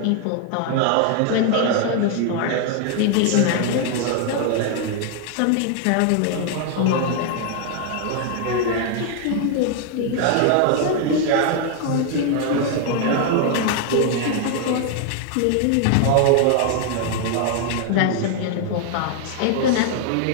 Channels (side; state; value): both; different; correlation 0.00